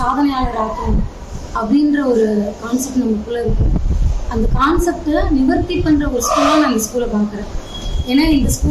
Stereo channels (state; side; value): identical; both; correlation 1.00